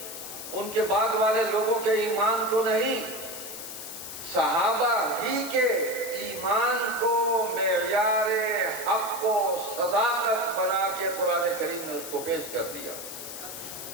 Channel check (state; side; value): noise; left; hiss, 9 dB below the sound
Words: ان کے بعد والے لوگوں کے ایمان کو نہیں، صحابہ ہی کے ایمان کو معیار حق و صداقت بنا کے قرآن کریم نے اس کو پیش کر دیا۔